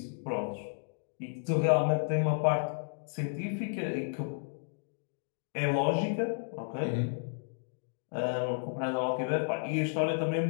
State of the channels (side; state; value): right; silent; digital silence